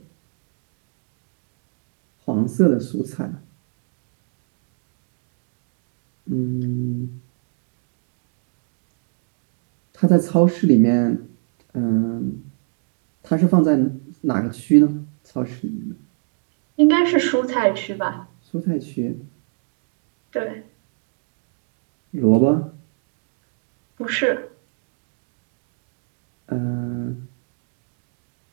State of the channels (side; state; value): left; silent; 62 dB below the other